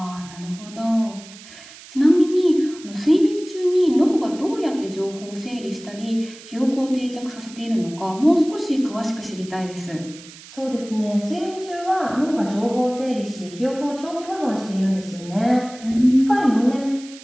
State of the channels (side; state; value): right; noise; hiss, 18 dB below the sound